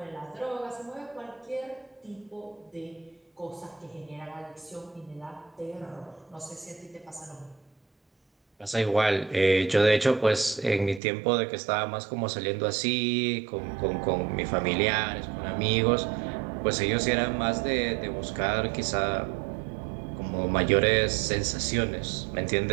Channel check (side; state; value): left; drops out; at 11.0 s